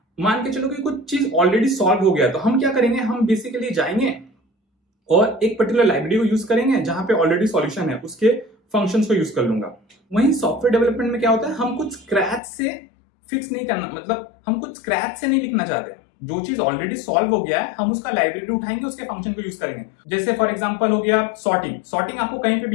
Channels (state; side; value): drops out; right; at 12.4 s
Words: मान के चलो कि कुछ चीज ऑलरेडी सॉल्व हो गया, तो हम क्या करेंगे, हम बेसिकली जाएंगे और एक पर्टिकुलर लाइब्रेरी को यूज करेंगे जहां पे ऑलरेडी सॉल्यूशन है, उसके फंक्शंस को यूज कर लूंगा। वहीं सॉफ्टवेयर डेवलपमेंट में क्या होता है, हम कुछ स्क्रैच से फिक्स नहीं करना, मतलब हम कुछ स्क्रैच से नहीं लिखना चाहते। जो चीज ऑलरेडी सॉल्व हो गया है हम उसका लाइब्रेरी उठाएंगे, उसके फंक्शन को यूज करेंगे। जैसे फॉर एग्जांपल हो गया सॉर्टिंग आपको कहीं पे